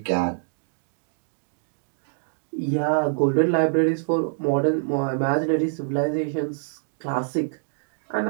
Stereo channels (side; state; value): left; silent; digital silence